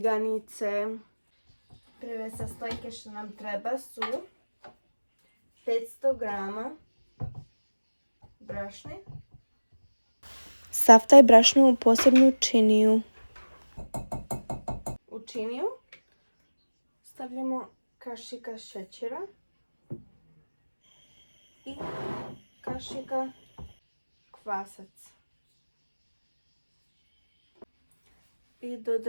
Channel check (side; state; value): both; inverted; correlation -1.00